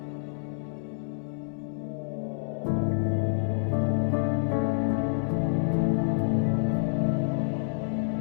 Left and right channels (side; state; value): right; silent; 59 dB below the other